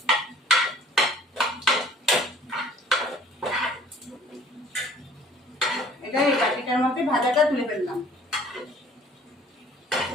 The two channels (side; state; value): both; normal; correlation 0.53